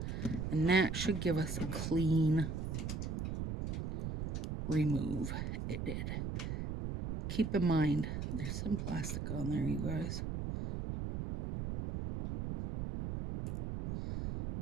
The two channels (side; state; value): right; noise; rumble, 3 dB below the sound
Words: And that should give us a clean remove. It did. Keep in mind, there's some plastic on there, you guys.